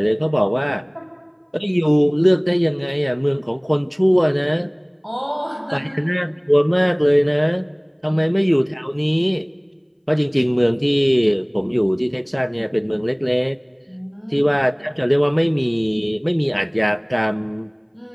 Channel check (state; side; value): identical; both; correlation 1.00